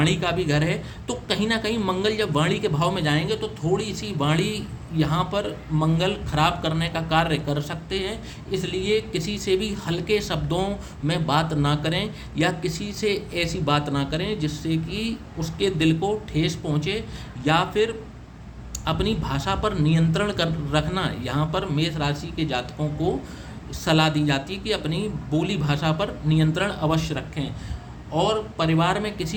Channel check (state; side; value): identical; both; correlation 1.00